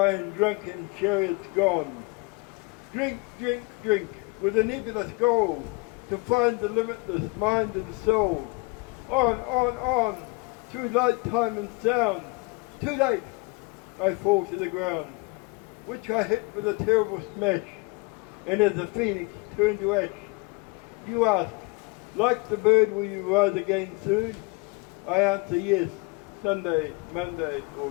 in drunken chariots gone. Drink, drink, drink, with a nebulous goal, to find the limitless mind and soul. On, through light, time and sound. Too late, I fall to the ground, which I hit with a terrible smash, and as a phoenix turned to ash. You ask, like the bird, will you rise again soon? I answer yes, Sunday, Monday, or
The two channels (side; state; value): right; quieter; 27.2 dB